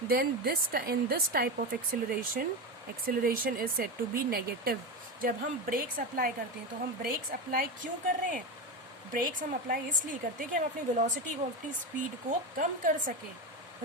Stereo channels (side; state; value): both; normal; correlation 0.18